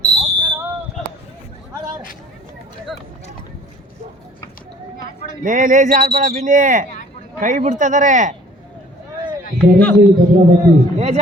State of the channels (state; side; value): normal; both; correlation 0.54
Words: ಲೇಜಿ ಆಡ್ಬೇಡ ಬಿನ್ನಿ ಕೈ ಬಿಡ್ತಿದಾರೆ ಲೇಜಿ